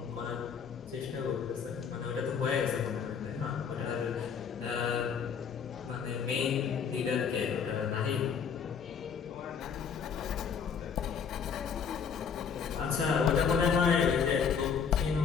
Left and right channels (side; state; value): right; quieter; 6.7 dB